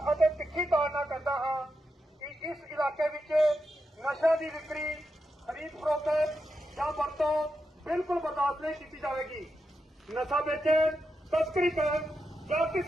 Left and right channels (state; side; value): normal; both; correlation 0.86